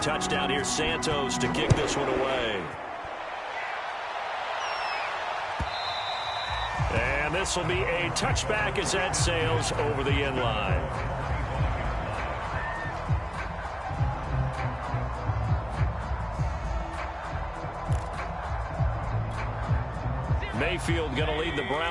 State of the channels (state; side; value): identical; both; correlation 1.00